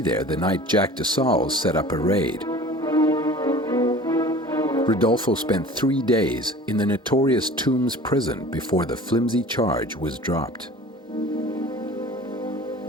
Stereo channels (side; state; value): both; normal; correlation 0.42